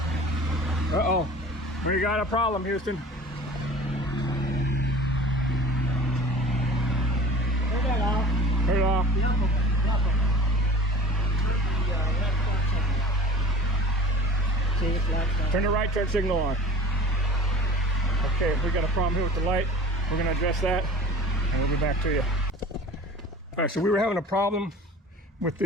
Uh-oh. We got a problem, Houston. Turn that off. Turn it off. The upper one. The upper one. Turn the left turn signal on. See, it's lights on. Turn the right turn signal on. Okay, we got a problem here with the light. We're gonna address that, and we'll be back to you. All right, so we were having a problem with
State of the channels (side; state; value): both; normal; correlation 0.42